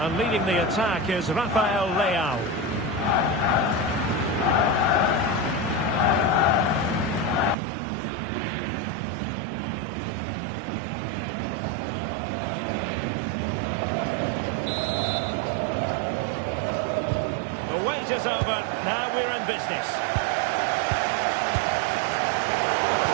leading the attack is Rafael Leao. The wait is over. Now we're in business.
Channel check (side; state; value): left; drops out; at 7.6 s